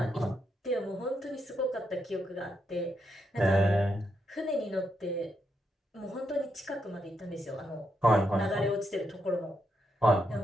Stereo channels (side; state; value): both; normal; correlation 0.81